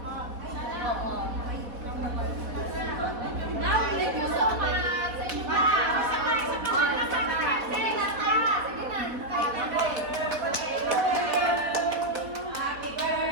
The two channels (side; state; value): left; late; 4.1 ms